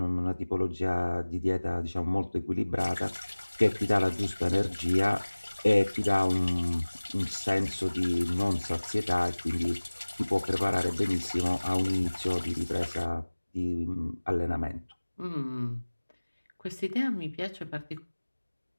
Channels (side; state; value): both; inverted; correlation -1.00